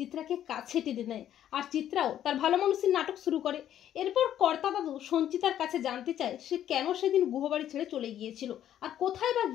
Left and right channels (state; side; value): quieter; right; 11.0 dB